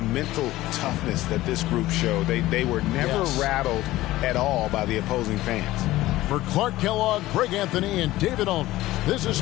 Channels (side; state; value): right; quieter; 16.8 dB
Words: toughness that this group showed? They were never rattled at all by the opposing fans. For Clark Kellogg, Greg Anthony, and David Ulmer, this is